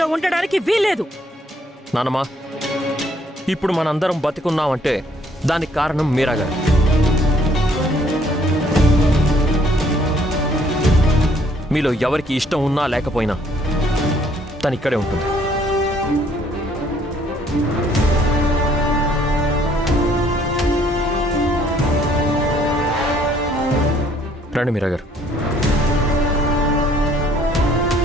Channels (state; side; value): normal; both; correlation 0.63